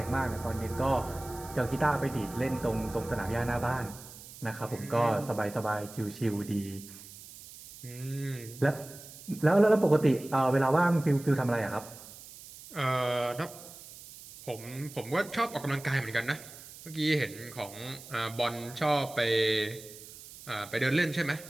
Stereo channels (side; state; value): right; noise; hiss, 17 dB below the sound